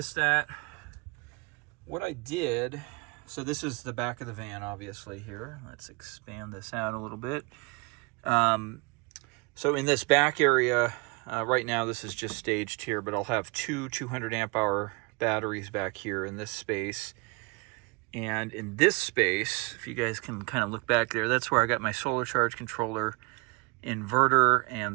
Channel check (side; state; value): left; quieter; 29.1 dB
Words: that, what I did, so this is the back of the van, obviously here. Let's expand this out a little bit. So in this back area, right now this is just staged here, but I'll have two 200 amp hour batteries back here in this space. And in this space, if you guys can kind of look back there, that's where I got my solar charge controller, inverter, and